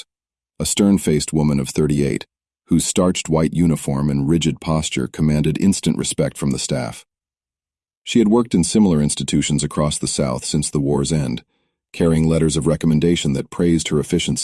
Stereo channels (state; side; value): identical; both; correlation 1.00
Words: a stern-faced woman of 38, whose starched white uniform and rigid posture commanded instant respect from the staff. She had worked in similar institutions across the South since the war's end, carrying letters of recommendation that praised her